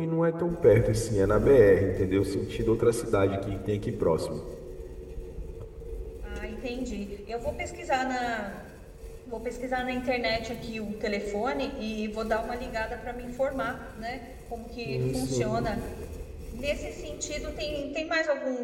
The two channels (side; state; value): both; identical; correlation 1.00